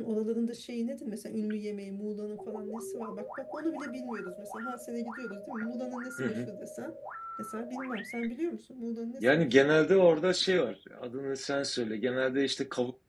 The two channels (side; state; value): both; identical; correlation 1.00